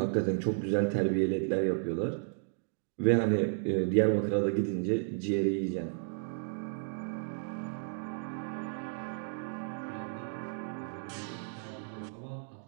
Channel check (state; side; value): silent; left; 56 dB below the other